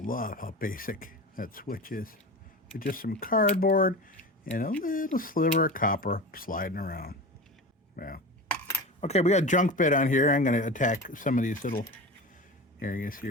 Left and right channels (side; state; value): both; normal; correlation 0.29